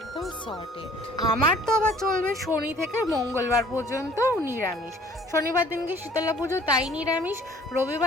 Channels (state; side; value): normal; both; correlation 0.54